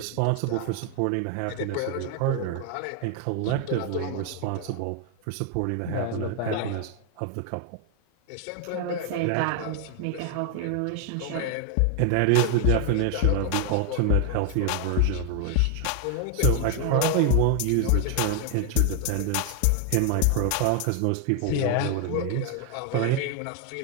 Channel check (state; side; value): different; both; correlation 0.00